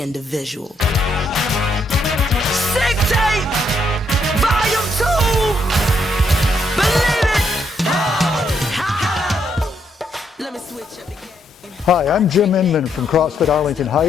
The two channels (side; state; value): both; normal; correlation 0.75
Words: Sick tape, volume 2. Believe it. Let me switch up again. Hi, I'm Jim Inman from CrossFit Arlington